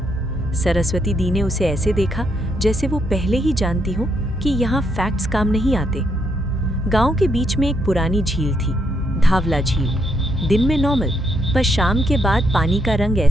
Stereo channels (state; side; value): normal; both; correlation 0.76